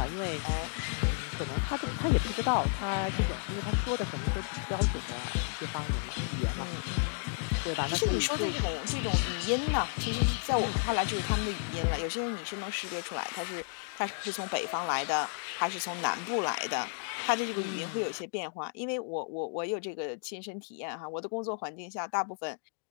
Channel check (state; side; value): silent; right; digital silence